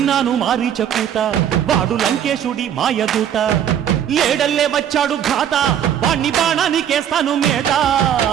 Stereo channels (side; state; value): left; quieter; 9.6 dB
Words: మారీచ కూత వాడు లంకేశుడి మాయదూత లేడల్లే వచ్చాడు ఘాత వాణ్ణి బాణానికేస్తాను మేత